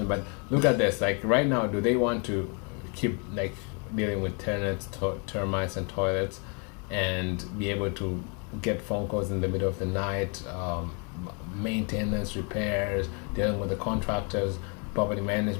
But look at this, like right now, do they want to keep like dealing with tenants, termites, and toilets, and be able to get phone calls in the middle of the night, maintenance, repairs, dealing with the contractors, property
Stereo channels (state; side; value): quieter; right; 35.6 dB